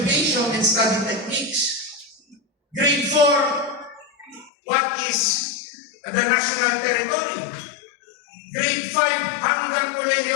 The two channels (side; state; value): right; drops out; at 4.5 s